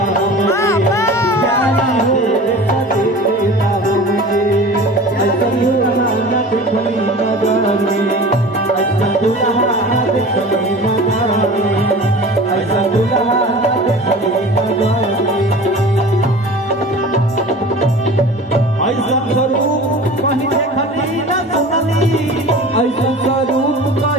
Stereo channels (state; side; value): normal; both; correlation 0.38